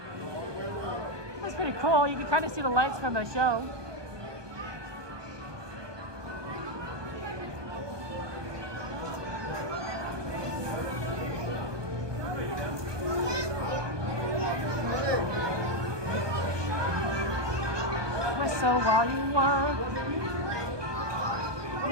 that's pretty cool. You can kind of see the lights from the show. So while you work,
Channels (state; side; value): late; left; 1.2 ms